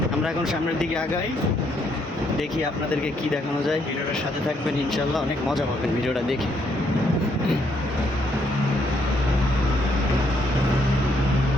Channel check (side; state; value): both; normal; correlation 0.72